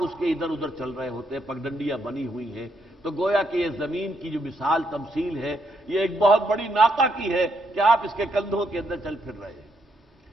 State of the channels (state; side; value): normal; both; correlation 0.76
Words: اس کے ادھر ادھر چل رہے ہوتے ہیں، پگڈنڈیاں بنی ہوئی ہیں۔ تو گویا کہ یہ زمین کی جو مثال تمثیل ہے، یہ ایک بہت بڑی ناقہ کی ہے کہ آپ اس کے کندھوں کے اندر چل پھر رہے ہیں۔